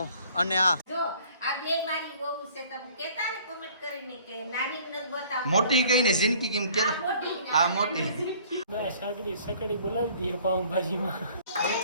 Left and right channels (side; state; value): both; inverted; correlation -0.54